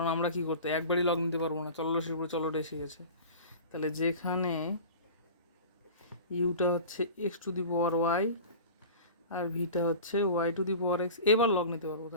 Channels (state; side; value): inverted; both; correlation -0.37